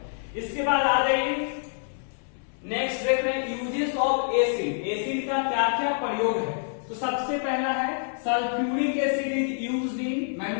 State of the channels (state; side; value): silent; right; digital silence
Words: इसके बाद आ जाइए नेक्स्ट देख रहे हैं यूजेस ऑफ एसिड। एसिड का क्या क्या प्रयोग है, तो सबसे पहला है sulphuric acid is used in